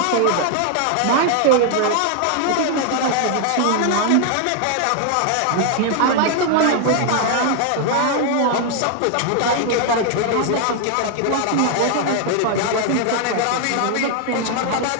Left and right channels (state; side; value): different; both; correlation 0.00